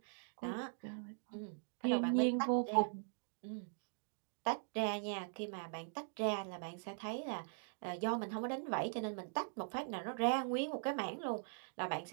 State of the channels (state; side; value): silent; left; digital silence